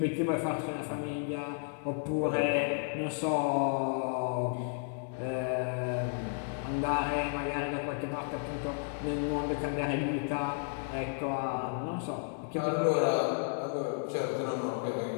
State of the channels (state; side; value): silent; right; 56 dB below the other